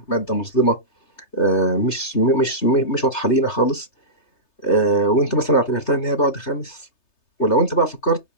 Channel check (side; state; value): right; late; 3.3 ms